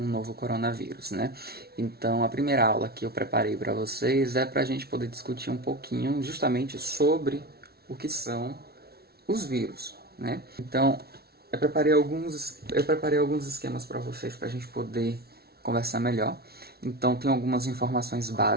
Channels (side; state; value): left; late; 0.45 ms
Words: novo coronavírus, né? Então a primeira aula que eu preparei para vocês é para a gente poder discutir um pouquinho justamente sobre o que são os vírus, né? Então eu preparei alguns esquemas para vocês para a gente poder conversar melhor. Então tem algumas informações